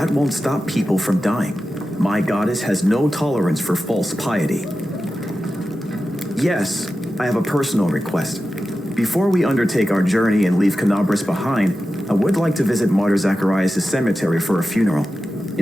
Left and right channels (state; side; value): normal; both; correlation 0.93